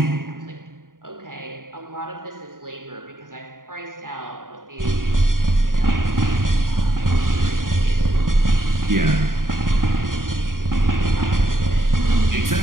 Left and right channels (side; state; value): left; late; 0.90 ms